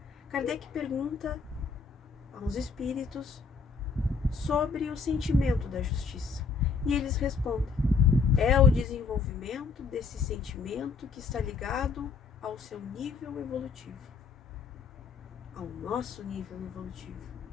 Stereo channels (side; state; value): right; quieter; 5.0 dB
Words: Kardec pergunta aos espíritos sobre o sentimento da justiça. E eles respondem: é o desenvolvimento desse sentimento que está ligado ao seu nível evolutivo, ao nosso nível evolutivo,